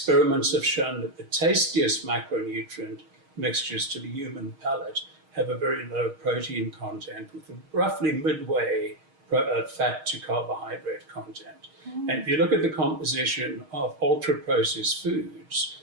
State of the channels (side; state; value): left; late; 6.4 ms